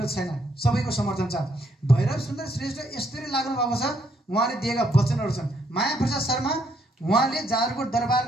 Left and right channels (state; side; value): normal; both; correlation 0.72